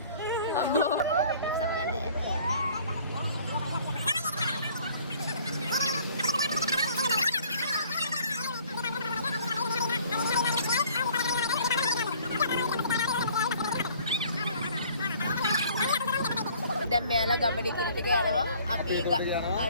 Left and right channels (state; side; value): inverted; both; correlation -0.55